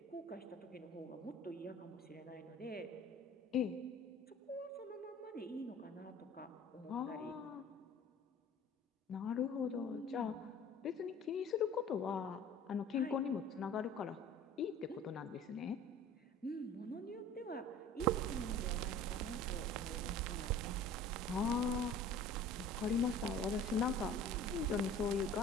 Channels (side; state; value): both; normal; correlation 0.45